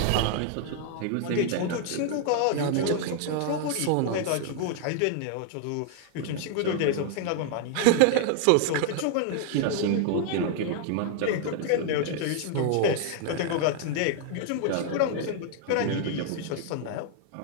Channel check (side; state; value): both; different; correlation 0.00